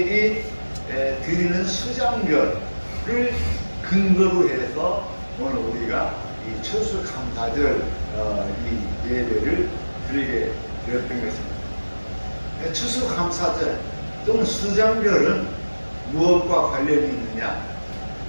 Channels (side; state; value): both; inverted; correlation -1.00